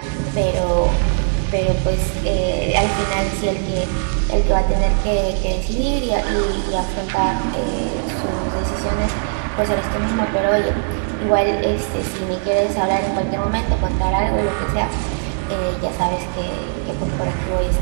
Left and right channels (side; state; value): left; silent; 62 dB below the other